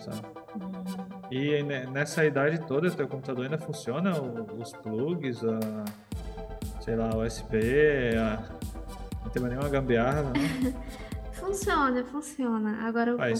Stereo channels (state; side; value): identical; both; correlation 1.00